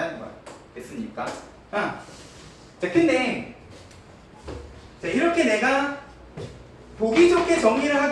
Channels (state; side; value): identical; both; correlation 1.00